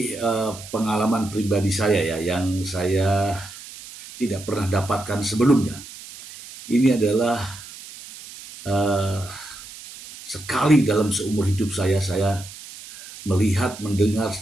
pengalaman pribadi saya ya, yang saya tidak pernah dapatkan sebelumnya. Ini adalah uh, sekali dalam seumur hidup saya melihat, mendengar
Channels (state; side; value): noise; right; hiss, 15 dB below the sound